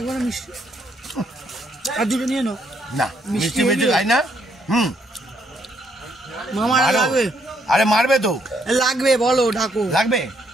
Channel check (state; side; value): normal; both; correlation 0.72